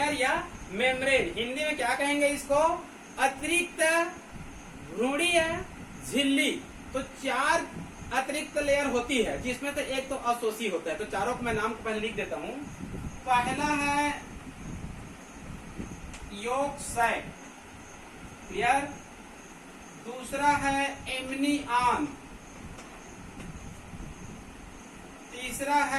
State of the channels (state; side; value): identical; both; correlation 1.00